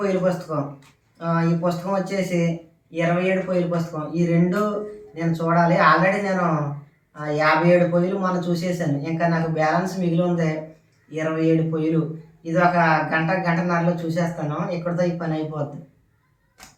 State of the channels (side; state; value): both; identical; correlation 1.00